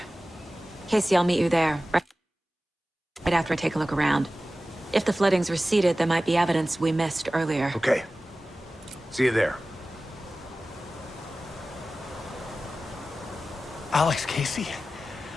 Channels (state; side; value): normal; both; correlation 0.96